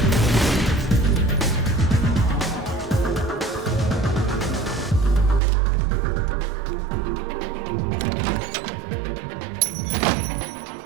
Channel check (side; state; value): left; drops out; at 5.4 s